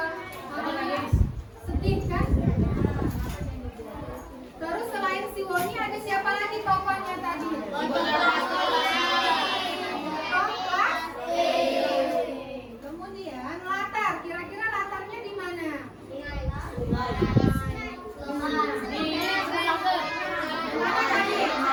sedih kan? Terus selain si Woni ada siapa lagi tokohnya tadi? Kemudian latar, kira-kira latarnya di mana?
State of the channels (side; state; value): both; identical; correlation 1.00